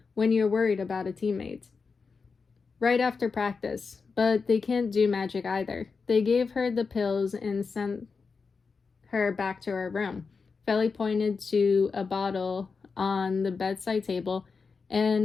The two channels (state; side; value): quieter; right; 4.9 dB